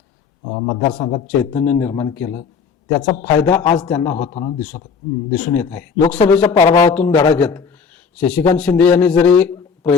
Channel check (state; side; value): quieter; right; 5.9 dB